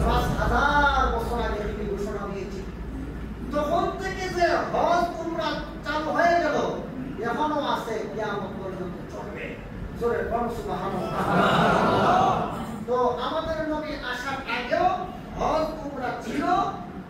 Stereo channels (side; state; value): both; identical; correlation 1.00